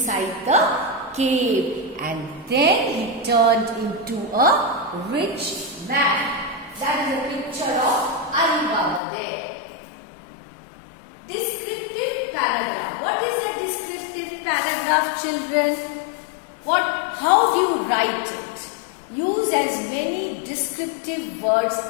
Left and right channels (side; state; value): right; drops out; at 9.0 s